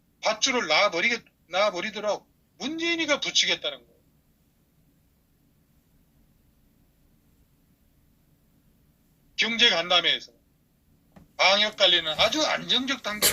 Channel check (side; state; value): both; identical; correlation 1.00